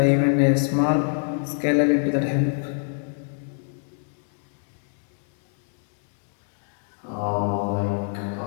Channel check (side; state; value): right; silent; 63 dB below the other